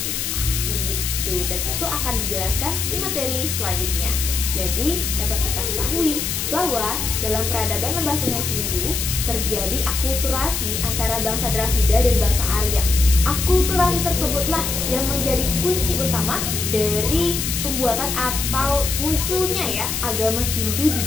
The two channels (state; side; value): noise; left; hiss, 2 dB below the sound